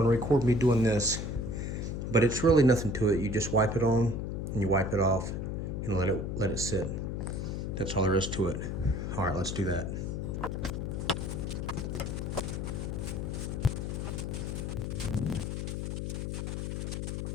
record me doing this, but it's really nothing to it. You just wipe it on and you wipe it off and let it sit. That's all there is to it. All right, let's do that.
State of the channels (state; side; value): noise; left; hum, 3 dB below the sound